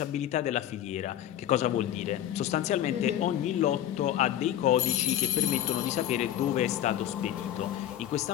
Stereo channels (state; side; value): quieter; right; 11.5 dB